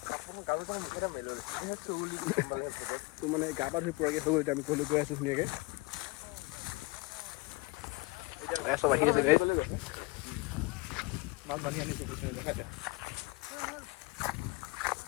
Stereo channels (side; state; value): right; quieter; 24.2 dB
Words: তো মানে গা পা ধুই পূৰাকৈ হৈ গ'ল এতিয়া আমি ঘৰলৈ গৈ আছোঁ ধুনীয়াকৈ চব আহি আছে গাইছ মাছ বান্ধি আনিছোঁ দেখাই দে